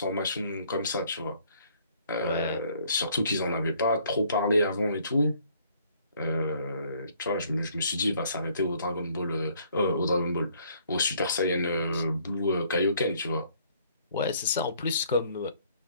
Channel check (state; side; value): inverted; both; correlation -0.62